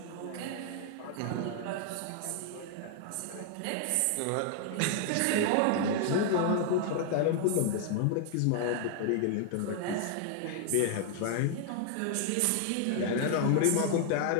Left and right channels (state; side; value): different; both; correlation 0.00